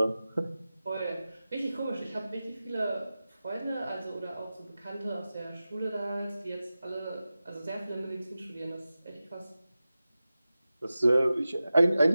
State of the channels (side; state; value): both; inverted; correlation -0.95